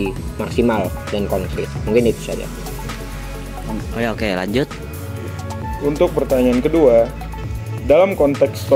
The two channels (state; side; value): identical; both; correlation 1.00